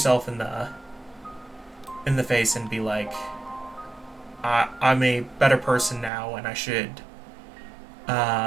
in the face and be like, I'm a better person now, and I should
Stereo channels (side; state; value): left; drops out; at 6.1 s